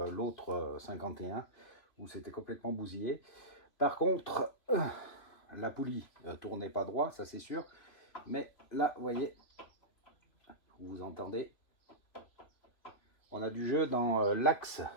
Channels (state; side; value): late; right; 3.1 ms